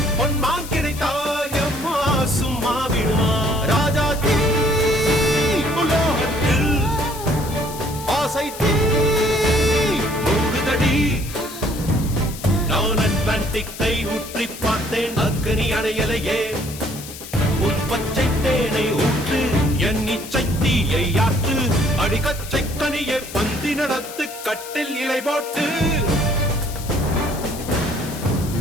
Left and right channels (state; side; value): noise; left; hiss, 13 dB below the sound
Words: பொன்மான் கிடைத்தாயம்மா சும்மா விடுமா ராஜா தீ உலோகத்தில் ஆசை தீ மூடுதடி நான் அட்லாண்டிக்கை ஊற்றி பார்த்தேன் அக்னி அணையலையே உன் பச்சை தேனை ஊற்று என் இச்சை தீயை ஆற்று அடிக்கச்சை கனியை பந்தி நடத்து கட்டில் இலை போட்டு